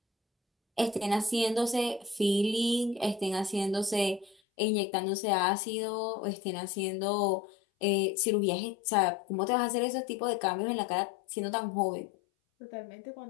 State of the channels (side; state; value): right; drops out; at 4.4 s